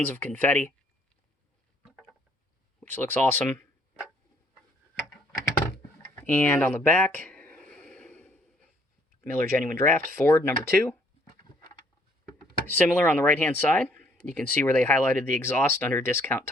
of confetti, which looks awesome. And on the back, Miller Genuine Draft, Ford number 2. Similar on the right-hand side. You can see where they highlighted the exhaust under discount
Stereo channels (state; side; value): normal; both; correlation 0.64